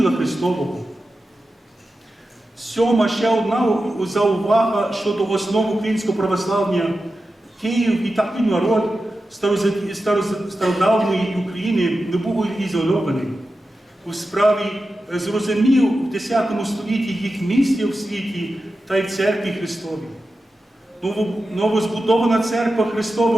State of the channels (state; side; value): normal; both; correlation 0.92